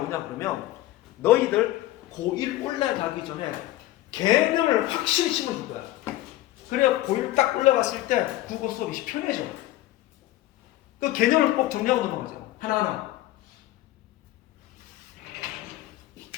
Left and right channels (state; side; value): quieter; right; 15.8 dB